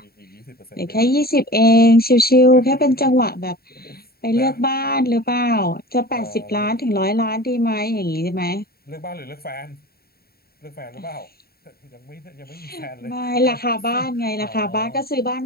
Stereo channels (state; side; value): late; right; 0.45 ms